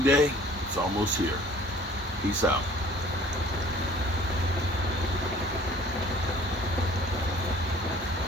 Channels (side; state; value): both; normal; correlation 0.52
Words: it's almost here. Peace out.